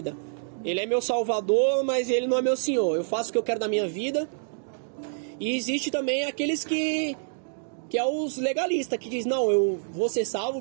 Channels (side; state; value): left; silent; digital silence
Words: Ele é meu Salvador, mas Ele não é meu Senhor. Eu faço o que eu quero da minha vida. E existe também aqueles que é os legalistas, que diz, não, eu vou ser salvo